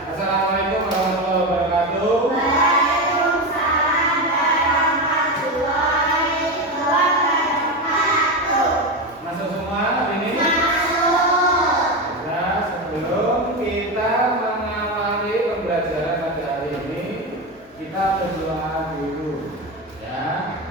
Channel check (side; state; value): both; normal; correlation 0.16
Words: Assalamualaikum warahmatullahi wabarakatuh. Waalaikumsalam warahmatullahi wabarakatuh. Masuk semua hari ini? Masuk. Nah, sebelum kita mengawali pembelajaran pada hari ini, kita berdoa dulu. Ya.